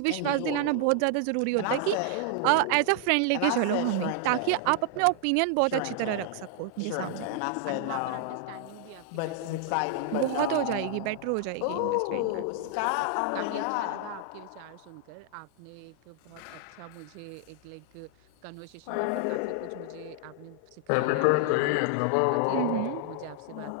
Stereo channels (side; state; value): both; different; correlation 0.00